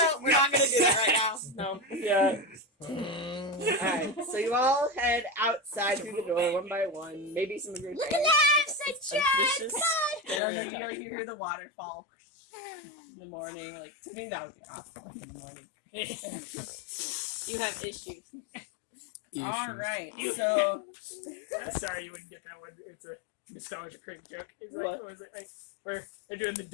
we're not gonna do that right now. No. Yeah. Alright, so you all head outside through the door one by one. Maybe some of your friends. Suspicious. And then you hear the waterfall in the morning. Like, to me, that would be awful in the morning. You have issues. Alright, so. I'm sorry you wouldn't get that one. It's a nostalgia cringe joke. It's What? like, what was it? Like, where they're doing the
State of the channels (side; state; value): right; drops out; at 10.4 s